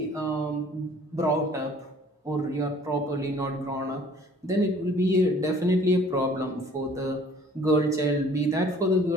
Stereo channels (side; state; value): both; normal; correlation 0.54